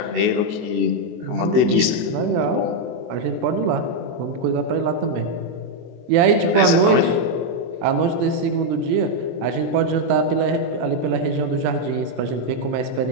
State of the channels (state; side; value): late; left; 24 ms